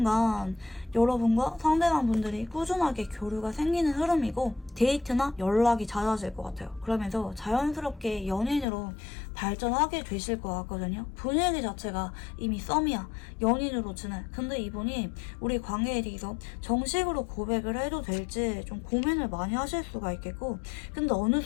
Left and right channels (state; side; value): drops out; right; at 8.7 s